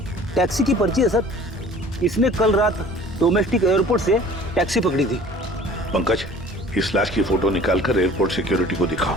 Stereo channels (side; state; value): both; normal; correlation 0.48